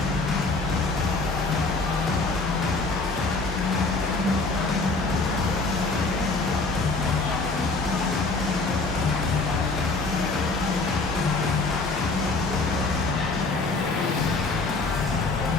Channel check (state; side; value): quieter; right; 3.6 dB